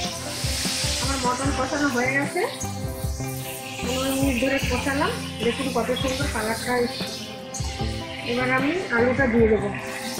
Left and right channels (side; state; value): both; identical; correlation 1.00